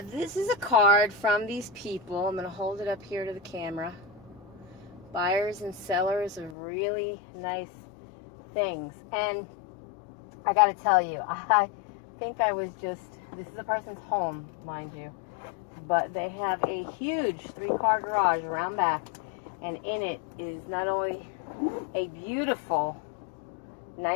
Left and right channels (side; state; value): right; drops out; at 6.6 s